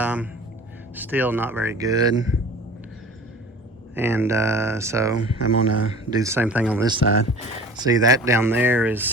still not very good. And so I'm gonna do the same thing on this side. See, that down there is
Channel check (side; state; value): both; normal; correlation 0.42